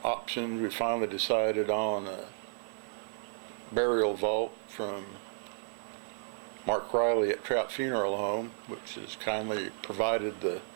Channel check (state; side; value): silent; left; digital silence